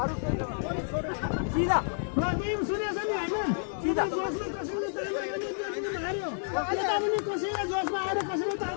अरू सिधा सुनेछ नि होइन सिधा जोसमा कसैले यता पनि कसैले जोसमा आएर कसैले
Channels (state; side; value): silent; right; digital silence